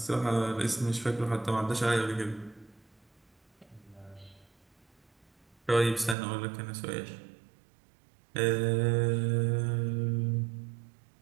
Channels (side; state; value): left; drops out; at 6.2 s